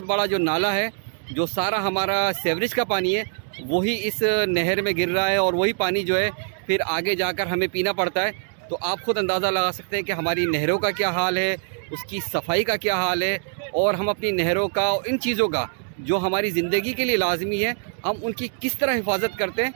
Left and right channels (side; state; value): left; silent; digital silence